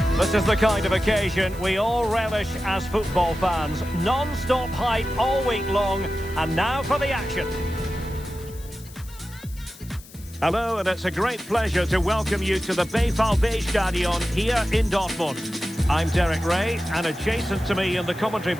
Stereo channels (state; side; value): noise; left; hiss, 20 dB below the sound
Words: This is the kind of occasion we all relish as football fans. Non-stop hype all week long, and now for the action. Hello, and it's a great pleasure to welcome you to the Stadion here in Dortmund. I'm Derek Ray, and adjacent to me in the commentary